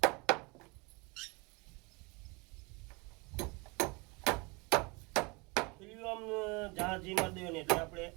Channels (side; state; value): left; quieter; 28.1 dB